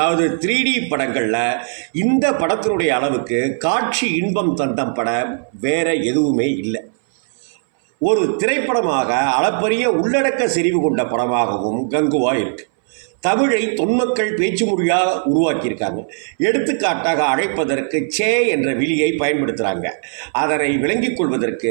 3D படங்களில் இந்த படத்தினுடைய அளவுக்கு காட்சி இன்பம் தந்த படம் வேற எதுவுமே இல்லை. ஒரு திரைப்படமாக அளப்பரிய உள்ளடக்க செறிவு கொண்ட படமாகவும் கங்குவா இருக்கு. தமிழை தொன்மக்கள் பேச்சு மொழியாக உருவாக்கியிருக்காங்க. எடுத்துக்காட்டாக அழைப்பதற்கு சே என்ற விழியை பயன்படுத்துகிறாங்க. அதனை விளங்கிக்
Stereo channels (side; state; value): left; silent; 64 dB below the other